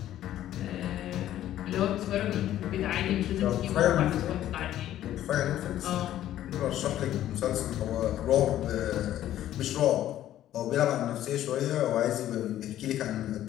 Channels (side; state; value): right; quieter; 12.6 dB